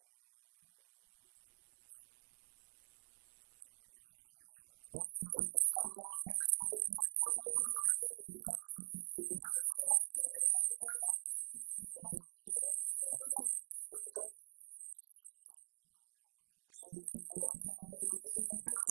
قل من حرم زينة الله التي أخرج لعباده والطيبات من الرزق قل هي للذين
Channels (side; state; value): left; silent; digital silence